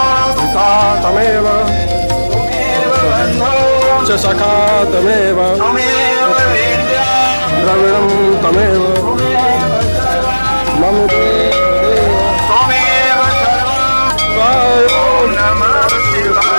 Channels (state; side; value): inverted; both; correlation -1.00